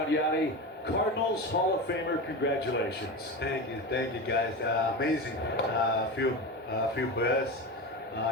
Yadi? Cardinals Hall of Famer, congratulations. Thank you guys. Amazing. Feel blessed.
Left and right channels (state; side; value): normal; both; correlation 0.24